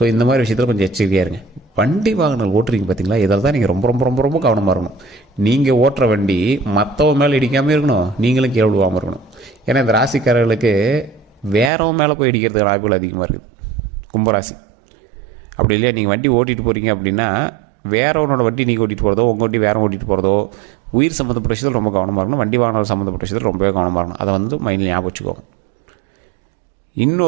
இந்த மாதிரி விஷயத்தில் கொஞ்சம் எச்சரிக்கையாக இருங்க. வண்டி வாகனங்கள் ஓட்டுறீங்க பார்த்தீங்களா, இதில் தான் நீங்கள் ரொம்ப ரொம்ப ரொம்ப ரொம்ப கவனமாக இருக்கணும். நீங்கள் ஓட்டுற வண்டி மற்றவங்க மேலே இடிக்காமல் இருக்கணும், நீங்களும் கீழே விழுவாமல் இருக்கணும். ஏன்னா இந்த ராசிக்காரர்களுக்கு வேறவங்க மேலே போய் இடிக்கிறதுக்கு வாய்ப்புகள் அதிகமாக இருக்குது. கும்பராசி அப்படி இல்லையா? நீங்கள் வண்டி ஓட்டிகிட்டு போகிறீங்க அப்படின்னா வேறவனோட வண்டி நீங்கள் ஓட்டிகிட்டு போகிறதோ உங்கள் வண்டி வேற ஓட்டிகிட்டு போகிறதோ உயிர் சம்மந்தப்பட்ட விஷயத்தில் ரொம்ப கவனமாக இருக்கணும். வண்டி வாகனம் சம்மந்தப்பட்ட விஷயத்தில் ரொம்பவே கவனமாக இருக்கணும். அதை வந்து மைண்டில் ஞாபகம் வச்சுக்கோங்க.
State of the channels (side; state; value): left; drops out; at 11.7 s